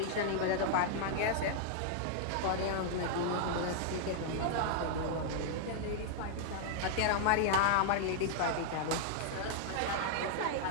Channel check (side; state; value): both; different; correlation -0.01